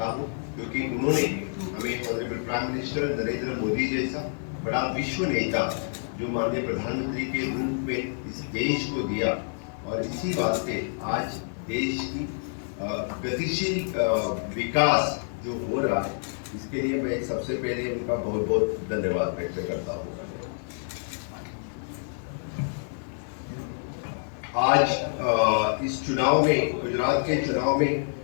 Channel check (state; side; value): silent; right; 60 dB below the other